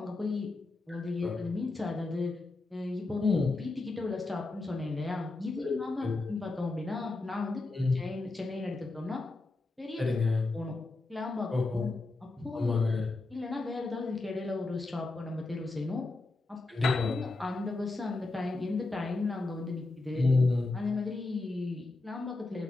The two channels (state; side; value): quieter; right; 3.2 dB